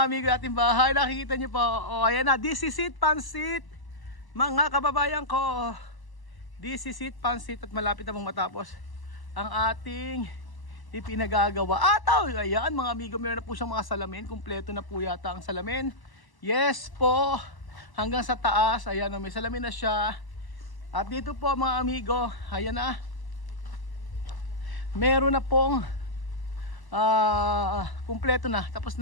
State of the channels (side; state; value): right; late; 1.0 ms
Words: amigo ating bahay, nakikita niyo po. Ayan na, this is it, pansit mga kababayan ko. This is it, pansit, at malapit na pong matapos ang ating ipinagagawa. Ayan mga amigo, meron na po siyang mga salamin. Kumpleto na po yata ang salamin. Yes po, hanggang sa taas. Ayan, may salamin na siya. At dito po mga amigo, ayan na, meron na pong kumpleto na, tapos